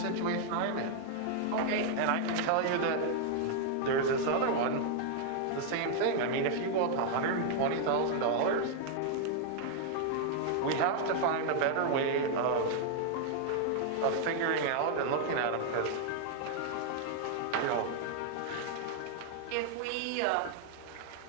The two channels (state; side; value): different; both; correlation 0.00